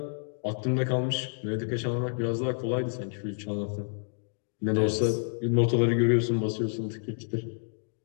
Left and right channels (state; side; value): silent; right; digital silence